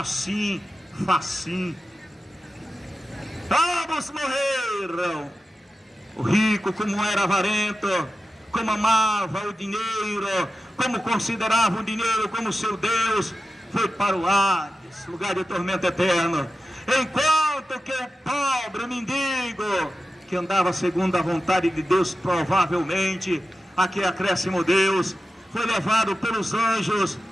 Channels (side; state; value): both; normal; correlation 0.92